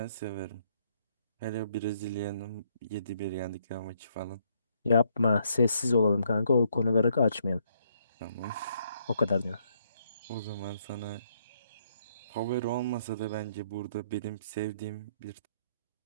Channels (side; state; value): both; inverted; correlation -0.71